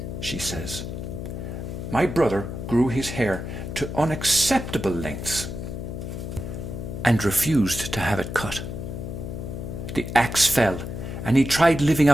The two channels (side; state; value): left; noise; hum, 6 dB below the sound